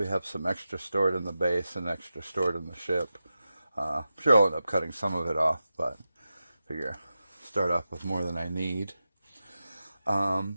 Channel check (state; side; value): inverted; both; correlation -0.92